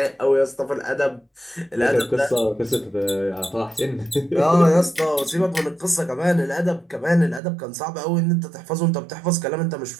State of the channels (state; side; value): drops out; left; at 7.4 s